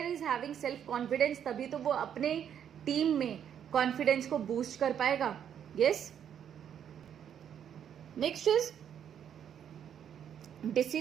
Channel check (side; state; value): left; quieter; 9.0 dB